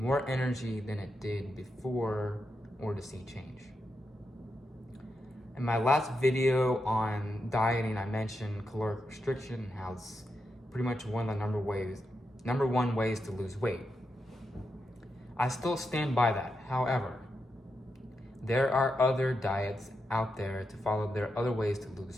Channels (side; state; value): both; normal; correlation 0.85